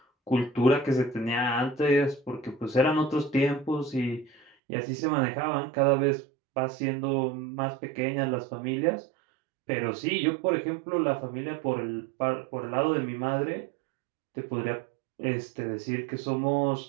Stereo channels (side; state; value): left; drops out; at 4.5 s